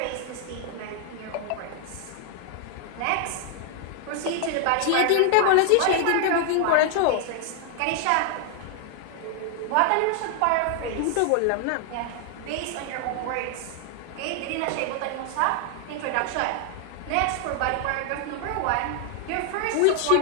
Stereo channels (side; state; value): both; different; correlation 0.00